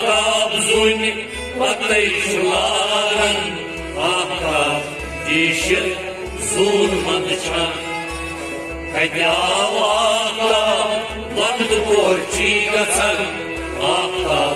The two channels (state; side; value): identical; both; correlation 1.00